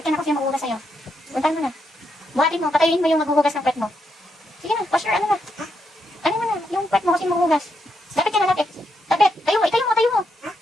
ka na kung sino maghuhugas sa'yo. Puntahan mo na. Buhatin mo, patayin mo yung maghuhugas ng pet mo. Sige na, wash your ano na. Ano mo na, yung pet mo kasi maghuhugas. Lapit ka na, lapit. Lapit, tayo mo. Tayo.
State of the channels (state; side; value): normal; both; correlation 0.81